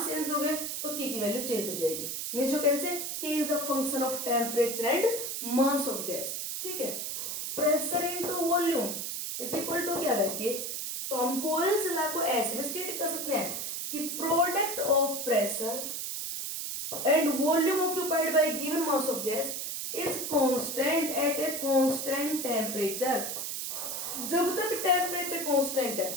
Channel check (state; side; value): noise; right; hiss, 4 dB below the sound